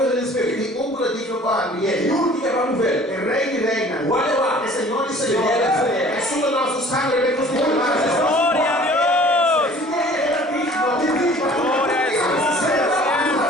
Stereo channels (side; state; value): both; normal; correlation 0.50